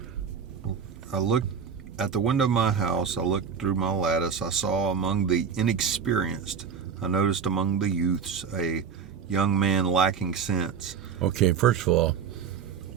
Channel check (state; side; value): quieter; left; 6.7 dB